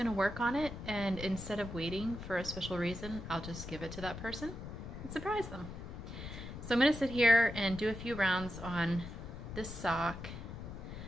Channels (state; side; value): noise; left; rumble, 9 dB below the sound